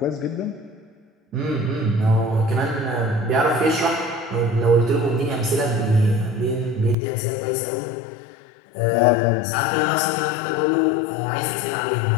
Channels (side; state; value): right; drops out; at 7.0 s